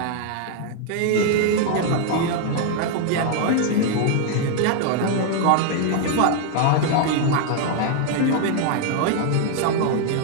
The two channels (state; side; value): different; both; correlation 0.00